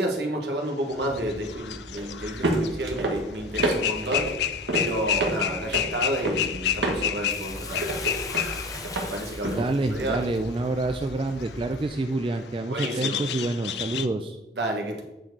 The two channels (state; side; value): normal; both; correlation 0.38